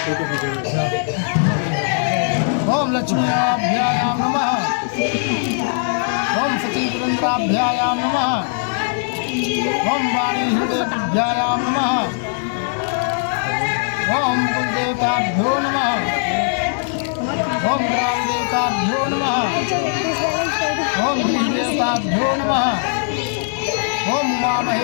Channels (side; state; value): right; silent; 66 dB below the other